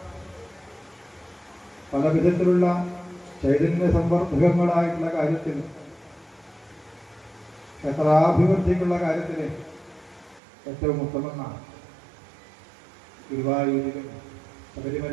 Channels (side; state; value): left; drops out; at 10.4 s